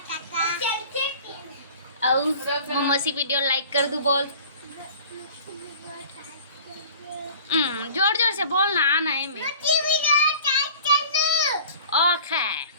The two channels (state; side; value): inverted; both; correlation -0.44